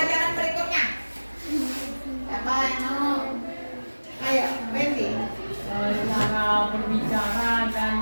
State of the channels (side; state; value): both; inverted; correlation -1.00